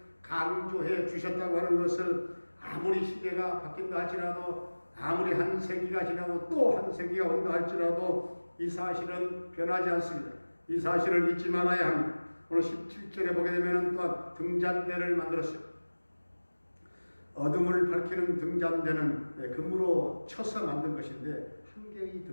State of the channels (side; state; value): both; inverted; correlation -1.00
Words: 강조해 주셨다고 하는 것을 아무리 시대가 바뀐다 할지라도 아무리 한 세기가 지나고 또 한 세기가 온다 할지라도 이 사실은 변하지 않습니다. 이 사실을 잊지 말아야 합니다. 오늘 17절에 보게 되면 또한 등잔대를 만들었어요. 어둠을 밝히는 등잔대는 금으로 쳐서 만든 것인데 한 개의